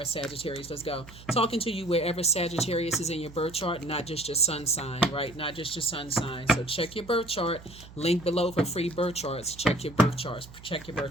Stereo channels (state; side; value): noise; right; hum, 18 dB below the sound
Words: Sagittarius. Let's go. Talking to you wherever Sagittarius is in your birth chart, not just your sun sign, right? Not just your sun sign. So check your birth chart. Link below for free birth charts. Check your birth charts. Check your